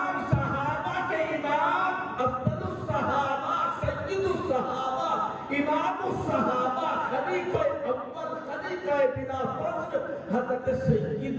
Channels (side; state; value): both; identical; correlation 1.00